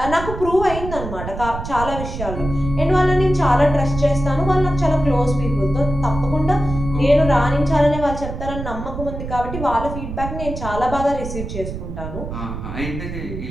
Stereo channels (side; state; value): right; noise; rumble, 7 dB below the sound